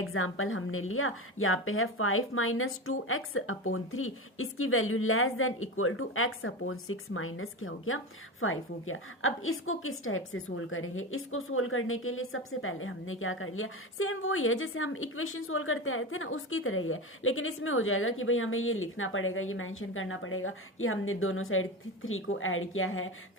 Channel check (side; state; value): both; normal; correlation 0.22